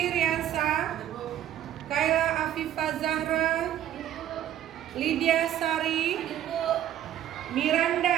Riansa, Kaila Afifah Zahra, Lydia Sari,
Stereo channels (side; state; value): left; quieter; 11.6 dB